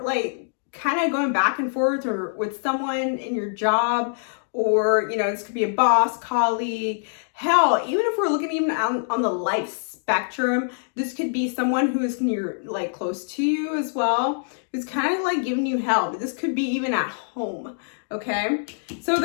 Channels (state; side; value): silent; right; digital silence